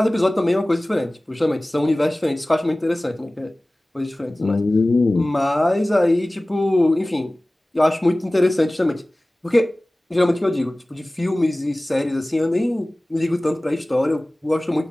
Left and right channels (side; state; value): both; normal; correlation 0.98